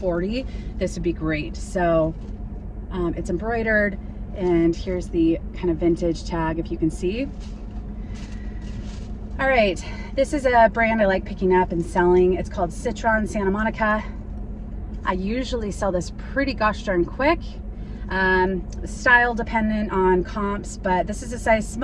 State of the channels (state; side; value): identical; both; correlation 1.00